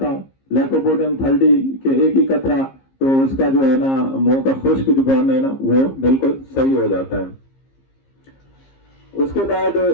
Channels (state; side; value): late; right; 15 ms